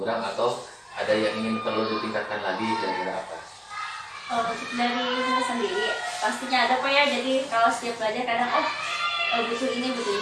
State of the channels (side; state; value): both; identical; correlation 1.00